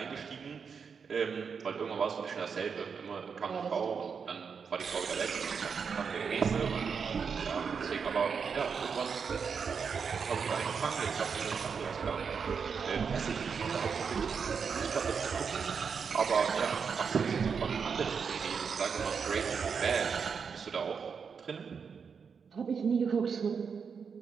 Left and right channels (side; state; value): left; quieter; 6.1 dB